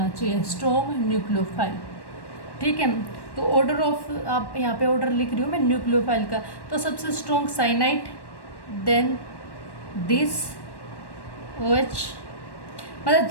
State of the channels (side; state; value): right; late; 1.1 ms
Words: चाहिए, स्ट्रॉन्ग न्यूक्लियोफाइल, ठीक है। तो ऑर्डर ऑफ, आप यहाँ पे ऑर्डर लिख रही हूँ मैं न्यूक्लियोफाइल का, तो सबसे strong cyanide, then this OH, मतलब